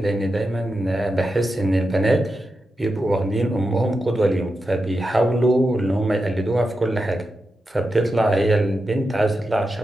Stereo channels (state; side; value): normal; both; correlation 0.89